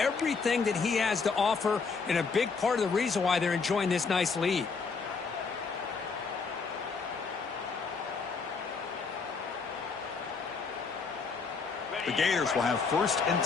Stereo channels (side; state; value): right; quieter; 5.0 dB